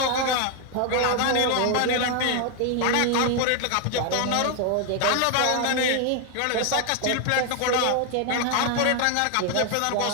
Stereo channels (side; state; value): both; different; correlation 0.01